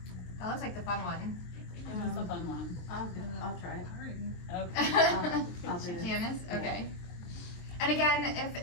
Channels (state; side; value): late; right; 23 ms